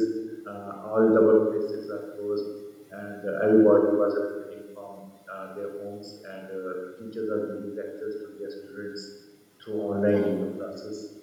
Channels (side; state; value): both; identical; correlation 1.00